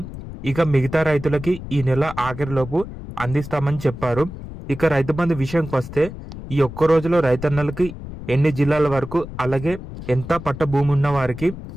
ఇక మిగతా రైతులకి ఈ నెల ఆఖరిలోపు అందిస్తామని చెప్పారు. ఇక రైతు బంధు విషయంకి వస్తే ఈ ఒక్క రోజులో రైతన్నలకి ఎన్ని జిల్లాల వరకు, అలాగే ఎంత పట్ట భూమి ఉన్న వారికి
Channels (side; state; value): left; noise; rumble, 11 dB below the sound